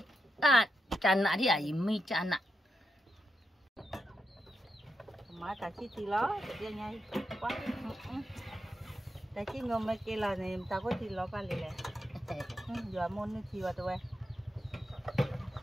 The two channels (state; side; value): normal; both; correlation 0.85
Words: Chăn nạ đi à? Mi chăn nạ. Má ta chỉ thì lo, dia nhai quá. Ta chỉ ngom mấy cái là này ta có thì lo cả lệ. Giờ môn nó chi vào tụi.